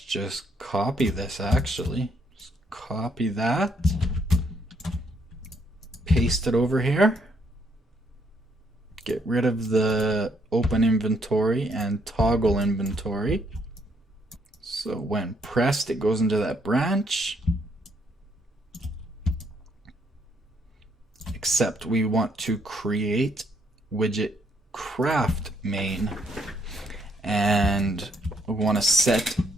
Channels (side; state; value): both; normal; correlation 0.72